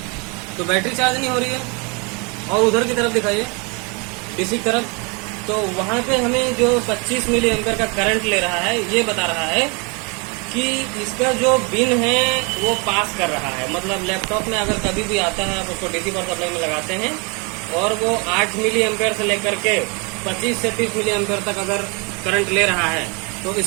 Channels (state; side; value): quieter; left; 31.5 dB